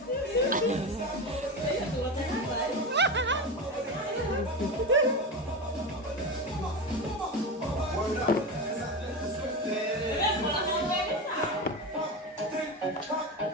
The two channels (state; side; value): normal; both; correlation 0.21